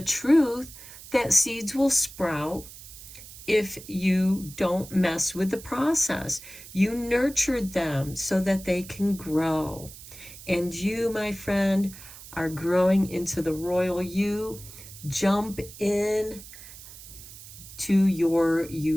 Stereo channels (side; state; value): right; noise; hiss, 16 dB below the sound